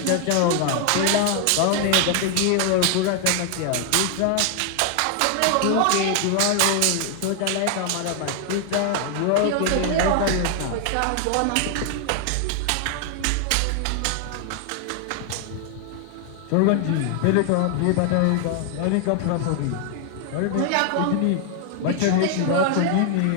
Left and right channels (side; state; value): both; different; correlation 0.00